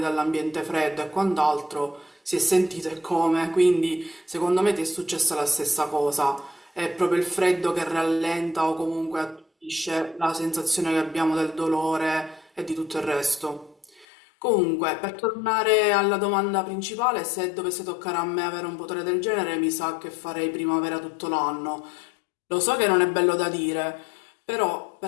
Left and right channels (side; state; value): right; drops out; at 14.1 s